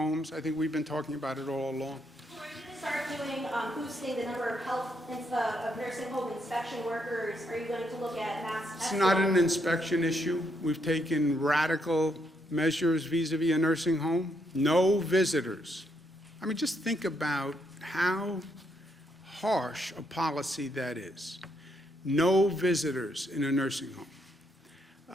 I think we've been talking about it all along. Are you going to start doing, boosting the number of nursing home inspection workers? Are you going to look at mass It's testing? not an inspection issue. We've taken radical measures vis-a-vis a nursing home. No visitors. I mean, just think about how harsh a policy that is. No visitors in a nursing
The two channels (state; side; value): normal; both; correlation 0.76